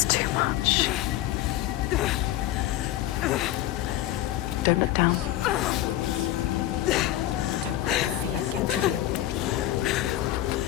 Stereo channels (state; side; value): quieter; right; 14.0 dB